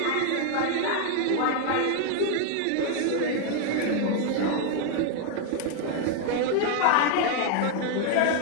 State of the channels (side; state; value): both; different; correlation 0.00